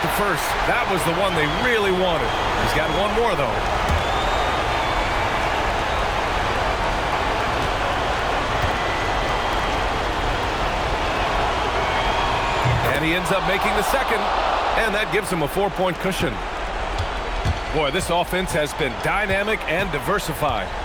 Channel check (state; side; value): identical; both; correlation 1.00